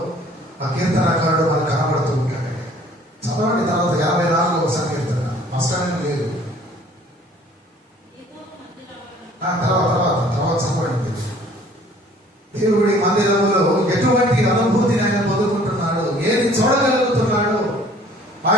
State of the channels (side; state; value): both; normal; correlation 0.54